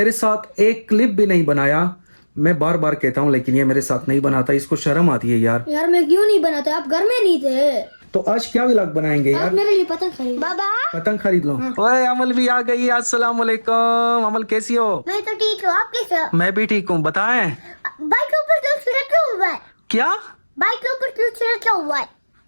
साथ एक क्लिप भी नहीं बनाया। मैं बार बार कहता हूँ लेकिन ये मेरे साथ नहीं बनाता, इसको शर्म आती है यार। यार मैं क्यों नहीं बनाता, आप घर में नहीं थे। तो आज क्या व्लॉग बनाएंगे यार? आप मेरे लिए पतंग खरीद। बाबा पतंग खरीद लो। ओए अमल भी आ गई, अस्सलाम वालेकुम। अमल कैसी हो? मैं तो ठीक हूँ, आप कैसे हो? मैं भी ठीक हूँ, बताएं। बाइक के ऊपर कुछ रखा हुआ है। क्या? बाइक के ऊपर कुछ रखा हुआ है।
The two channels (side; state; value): both; inverted; correlation -1.00